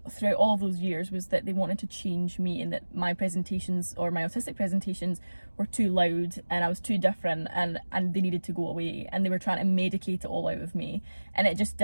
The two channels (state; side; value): inverted; both; correlation -1.00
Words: throughout all of those years was that they wanted to change me, and that my presentations, or my autistic presentations, were too loud and I was too different, and they needed to go away, and they were trying to medicate it all out of me, and it just